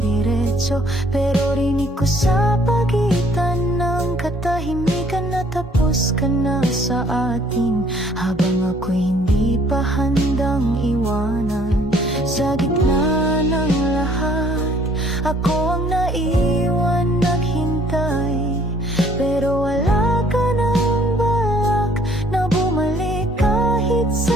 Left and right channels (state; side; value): normal; both; correlation 0.60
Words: pero rinig ko sa pagitan ng katahimikan na tapos ka na sa atin, habang ako'y hindi pa handang iwanan. Sa gitna ng lahat, ako ang naiwan naghintay, pero wala ka ng balak na bumalik kahit